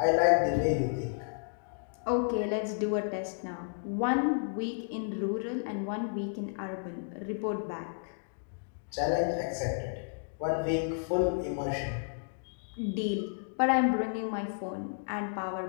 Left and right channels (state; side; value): silent; right; digital silence